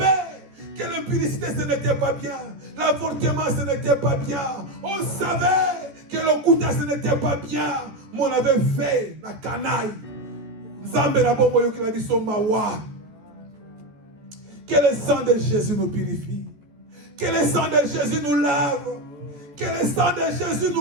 que l'impudicité ce n'était pas bien, l'avortement ce n'était pas bien, on savait que le couta ce n'était pas bien, mais on avait fait la canaille. Que le sang de Jésus nous purifie, que le sang de Jésus nous lave, que le sang de Jésus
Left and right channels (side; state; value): left; late; 14 ms